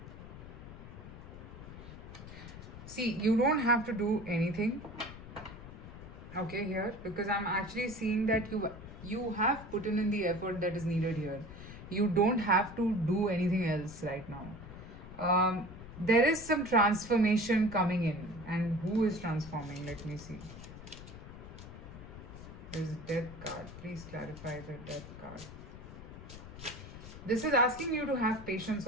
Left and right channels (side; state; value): left; noise; rumble, 13 dB below the sound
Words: See, you don't have to do anything, okay, here, because I'm actually seeing that you have put in the effort that is needed here. You don't have to do anything else right now. There is some transformation coming in, and who is transforming? Let me see. There's a Death card. Please clarify the Death card. This is asking you to have patience